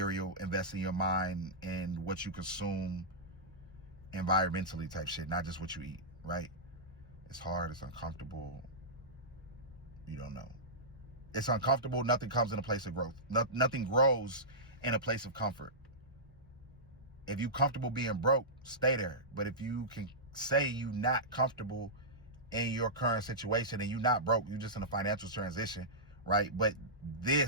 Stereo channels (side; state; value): both; normal; correlation -0.14